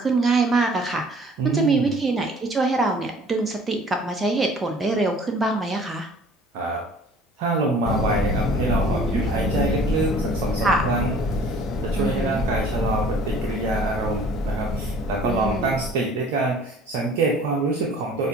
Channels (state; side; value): normal; both; correlation 0.52